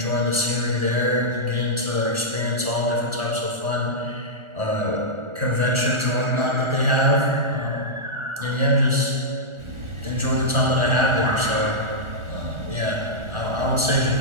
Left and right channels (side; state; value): left; late; 1.4 ms